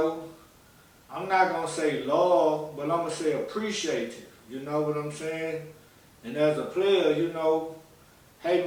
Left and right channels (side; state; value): both; identical; correlation 1.00